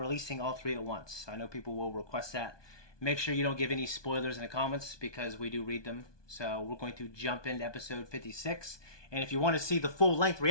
all 3 at once. I know people will request that. Make sure you don't give any spoilers in the comments because we do read them. So we're going to jump into episode 56. And if you want to see the full-length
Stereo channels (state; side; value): late; right; 1.2 ms